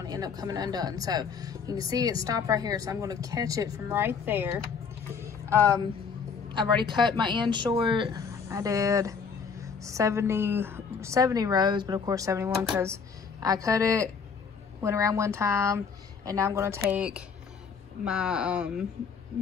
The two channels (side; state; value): right; quieter; 5.9 dB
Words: to end up coming undone. So you can see it stopped right here. So I'm going to catch it from right there. I've already cut my end short. I did 70 rows, but of course 71 because I cut it, went around one time, and now I'm going to take my